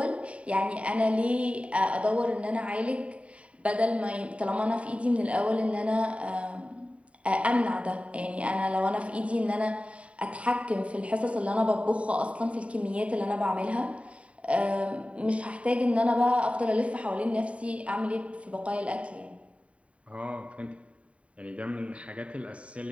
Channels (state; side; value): late; left; 0.064 ms